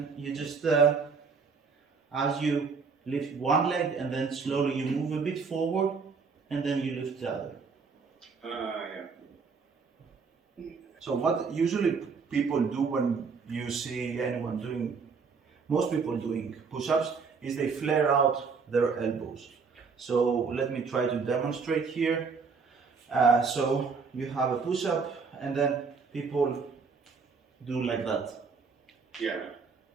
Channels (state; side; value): quieter; left; 5.2 dB